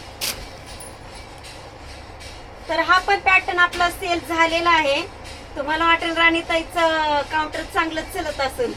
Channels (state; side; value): identical; both; correlation 1.00